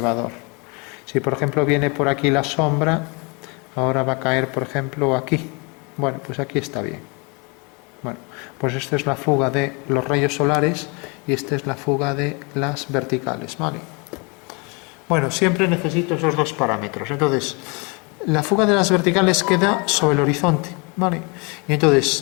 Si, por ejemplo, viene por aquí la sombra, ahora va a caer, por ejemplo, aquí. Bueno, pues aquí está bien. Bueno, pues esta es la fuga de los rayos solares y esta es la fuga de las verticales, ¿vale? Bueno, siempre necesito esos dos parámetros. Entonces, la fuga de las verticales queda sobre el horizonte, ¿vale? Y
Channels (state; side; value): quieter; right; 31.2 dB